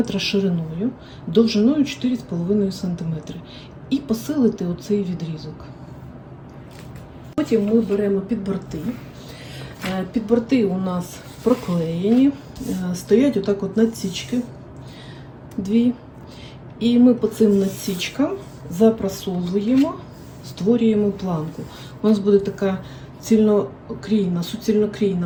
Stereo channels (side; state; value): both; identical; correlation 1.00